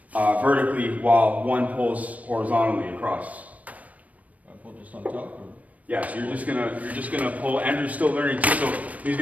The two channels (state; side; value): late; left; 0.070 ms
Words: vertically while one pulls horizontally across. I pull just on top? Or? Yeah, so you're just gonna pull. Andrew's still learning too, so